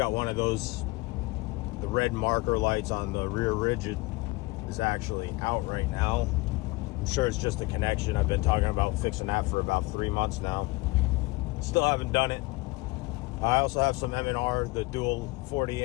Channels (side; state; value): right; quieter; 23.1 dB